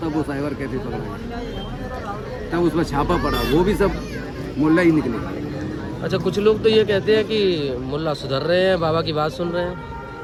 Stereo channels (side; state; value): both; identical; correlation 1.00